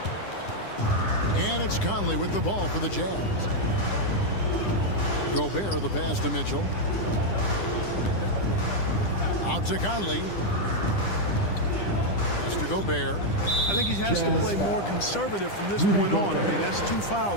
And it's Conley with the ball for the Jazz. Gobert, the pass to Mitchell. Out to Conley. Pass to Gobert. I think he has to play more conservative from this point on. I mean, that's 2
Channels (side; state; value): right; late; 10 ms